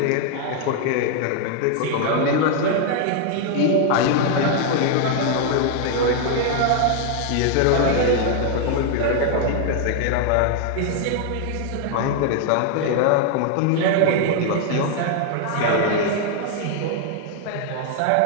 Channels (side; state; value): both; different; correlation 0.00